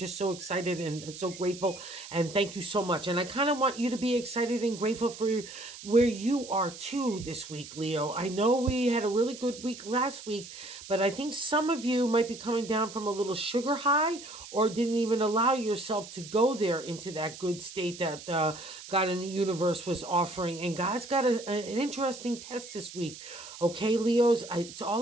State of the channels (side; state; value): right; noise; hiss, 14 dB below the sound